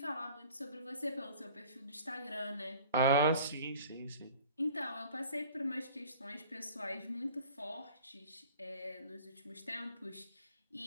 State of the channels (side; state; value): both; inverted; correlation -0.47